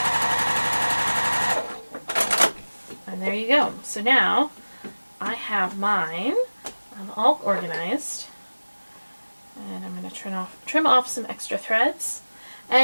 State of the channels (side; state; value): both; inverted; correlation -1.00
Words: And there you go. So now I have mine all organized, and I'm going to trim off some extra threads.